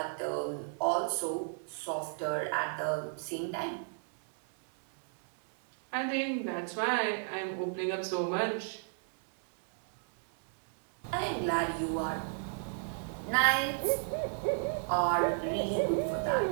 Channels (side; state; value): left; silent; digital silence